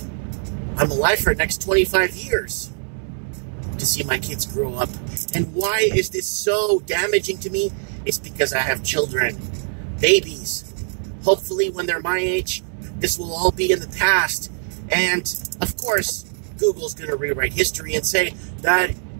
I'm alive for the next 25 years to see my kids grow up. And why is this so damaging to me? It's because I have children, babies. Hopefully when they're my age, this will all be in the past. And of course, Google's going to rewrite history and say that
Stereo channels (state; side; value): silent; left; digital silence